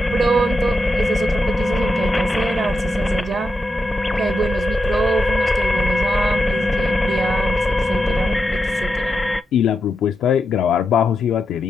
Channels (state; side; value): normal; both; correlation 0.87